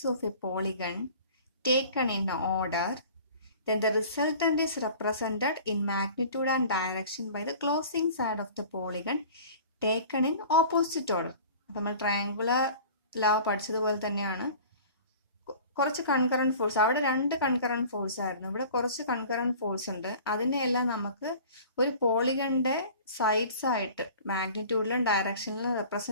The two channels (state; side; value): inverted; both; correlation -0.44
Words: of a polygon taken in order, then the resultant is represented in magnitude and direction by the closing side of the polygon taken in opposite order. നമ്മൾ triangular law പഠിച്ചതുപോലെ തന്നെയാണ്. കുറച്ച് concurrent force, അവിടെ രണ്ട് concurrent force ആയിരുന്നു, ഇവിടെ കുറച്ച് concurrent force ഉണ്ട്. അതിനെയെല്ലാം നമുക്ക് ഒരു പോളിഗണിന്റെ സൈഡ്സ് ആയിട്ട് മാഗ്നിറ്റ്യൂഡിലും ഡയറക്ഷനിലും